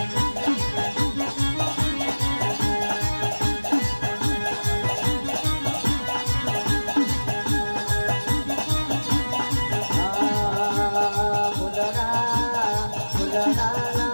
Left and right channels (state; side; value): inverted; both; correlation -1.00